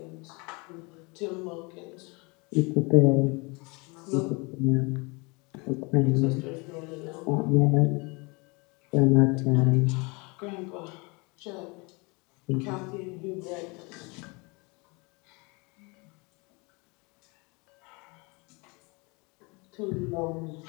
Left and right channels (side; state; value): right; quieter; 28.5 dB